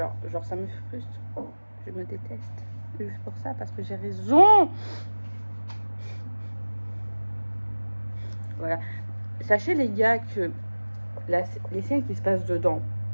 ça me frustre. Je me déteste. Juste pour ça, parce que j'ai raison. Voilà. Sachez, les gars, que les scènes qui se passent dedans,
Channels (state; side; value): inverted; both; correlation -1.00